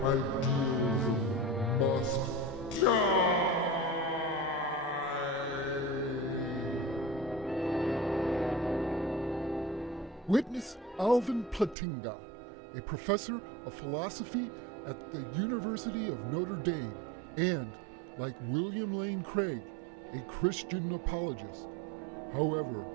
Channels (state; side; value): drops out; left; at 11.8 s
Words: idealism must die! Witness Alvin Plantinga, a professor of philosophy at the University of Notre Dame, and, like William Lane Craig, a Christian apologist. However,